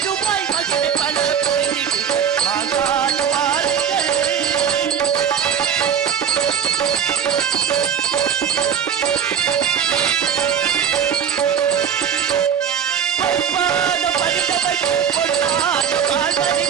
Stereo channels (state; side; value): quieter; left; 8.1 dB